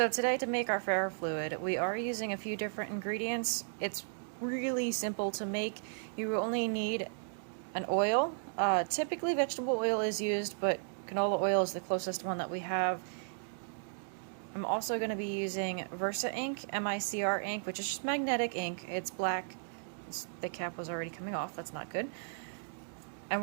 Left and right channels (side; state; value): left; silent; digital silence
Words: today to make our ferrofluid, we are using a few different ingredients. It's really simple to make. You only need an oil. Typically vegetable oil is used, but canola oil is the closest one that we have. I'm also going to be using Versa ink, MICR ink, which is just magnetic ink. It's black. The cap was already coming off, that's not good. And